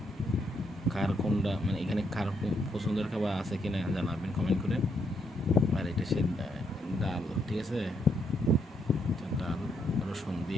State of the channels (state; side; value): normal; both; correlation 0.76